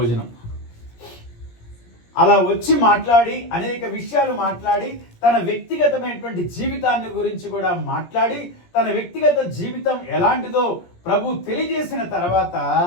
అలా వచ్చి మాట్లాడి అనేక విషయాలు మాట్లాడి తన వ్యక్తిగతమైనటువంటి జీవితాన్ని గురించి కూడా మాట్లాడి తన వ్యక్తిగత జీవితం ఎలాంటిదో ప్రభు తెలియజేసిన తర్వాత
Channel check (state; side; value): late; right; 17 ms